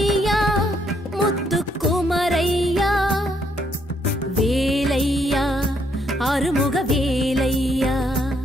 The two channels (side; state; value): both; normal; correlation 0.72